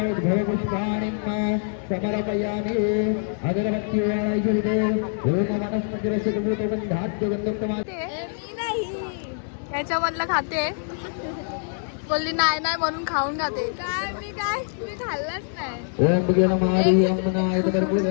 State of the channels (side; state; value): right; silent; digital silence